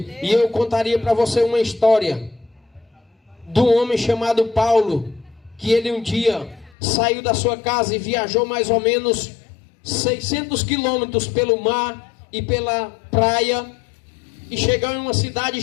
E eu contaria para você uma história de um homem chamado Paulo, que ele um dia saiu da sua casa e viajou mais ou menos 600 quilômetros pelo mar e pela praia, e chegou em uma cidade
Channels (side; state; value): right; drops out; at 6.8 s